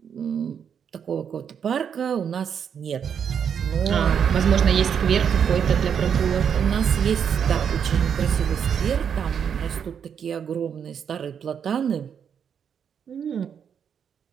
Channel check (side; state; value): left; quieter; 7.7 dB